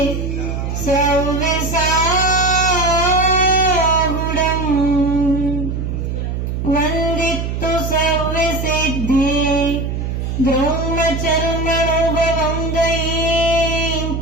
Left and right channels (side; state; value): right; noise; hum, 3 dB below the sound